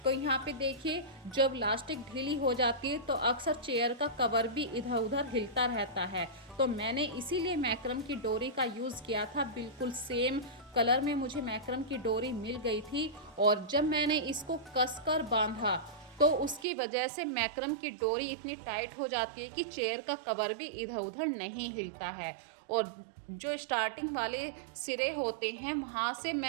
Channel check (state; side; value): drops out; left; at 16.7 s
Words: तो यहाँ पे देखिए, जब लास्टिक ढीली हो जाती है तो अक्सर चेयर का कवर भी इधर उधर हिलता रहता है। तो मैंने इसीलिए मैक्रम की डोरी का यूज़ किया था। बिल्कुल सेम कलर में मुझे मैक्रम की डोरी मिल गई थी, और जब मैंने इसको कसकर बांधा तो उसकी वजह से मैक्रम की डोरी इतनी टाइट हो जाती है कि चेयर का कवर भी इधर उधर नहीं हिलता है। और जो स्टार्टिंग वाले सिरे होते हैं, वहाँ से